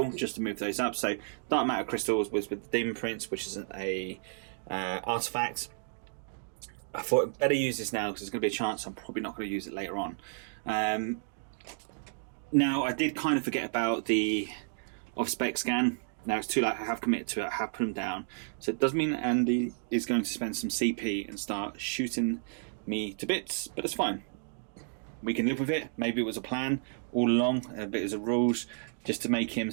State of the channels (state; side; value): silent; left; digital silence